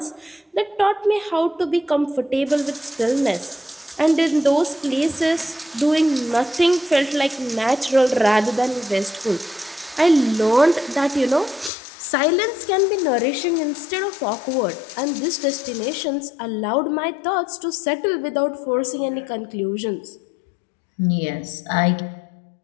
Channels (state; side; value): drops out; right; at 11.7 s